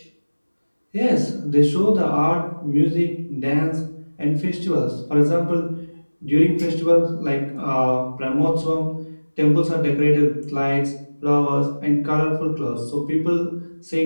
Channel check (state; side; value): inverted; both; correlation -1.00